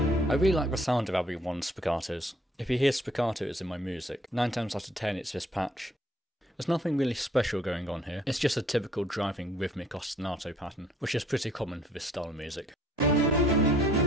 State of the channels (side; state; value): both; normal; correlation 0.62